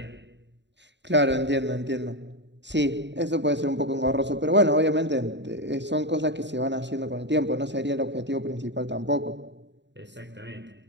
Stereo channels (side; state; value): left; late; 0.52 ms